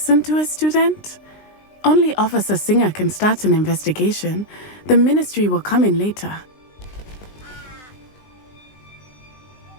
to a student? Only Officer Singer can start an investigation. The Ministry will come in later.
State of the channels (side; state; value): right; late; 20 ms